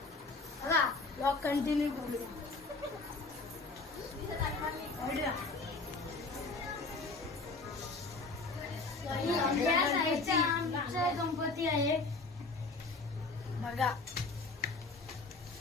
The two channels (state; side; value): quieter; right; 3.6 dB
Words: चला ब्लॉग कंटिन्यू करूया. या साईडचा आमचा गणपती आहे बघा.